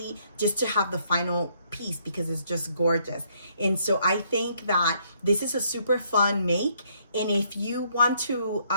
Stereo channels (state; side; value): inverted; both; correlation -0.69